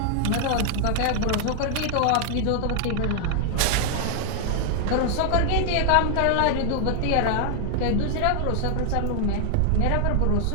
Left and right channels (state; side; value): different; both; correlation 0.00